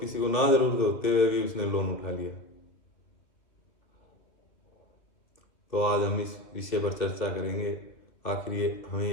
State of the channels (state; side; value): late; right; 2.5 ms